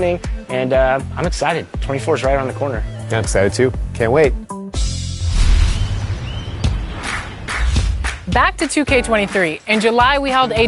and I'm excited. 24 is right around the corner. Yeah, I'm excited too. Can't wait. Back to 2K23. In July, we held a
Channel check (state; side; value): identical; both; correlation 1.00